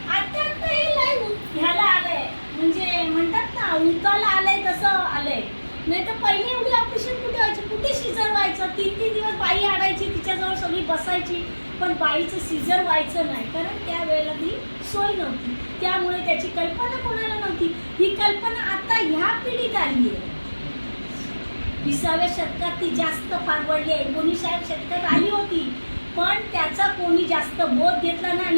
आता हे लय ह्याला आलंय, म्हणजे म्हणतात ना उताला आलंय तसं आलंय. नाही तर पहिले एवढी ऑपरेशन कुठे व्हायची, कुठे सिझर व्हायचं, 3-3 दिवस बाई आणायची तिच्याजवळ सगळी बसायची, पण बाईचं सिझर व्हायचं नाही, कारण त्यावेळेला ती सोय नव्हती. त्यामुळे त्याची कल्पना कोणाला नव्हती. ही कल्पना आता ह्या पिढीत आली आहे. 20व्या शतकात ती जास्त फार वाढली आहे. 19व्या शतकात आली होती, पण त्याचा कोणी जास्त बोध घेतला नाही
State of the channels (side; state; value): both; inverted; correlation -1.00